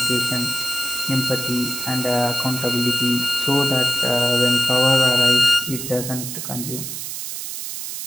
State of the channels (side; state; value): right; noise; hiss, 7 dB below the sound